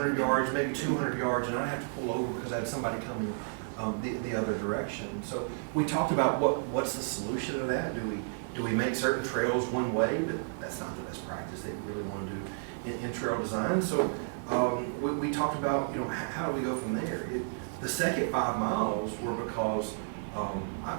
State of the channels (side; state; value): left; silent; digital silence